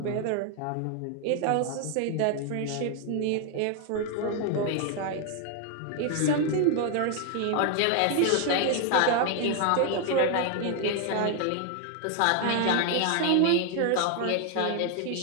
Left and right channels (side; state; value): both; different; correlation 0.00